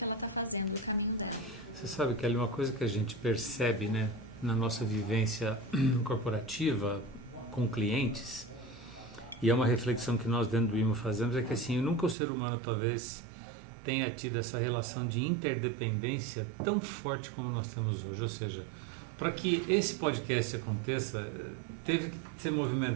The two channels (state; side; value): drops out; left; at 12.2 s